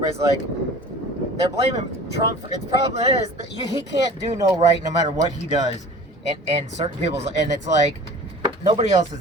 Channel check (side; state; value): both; normal; correlation 0.42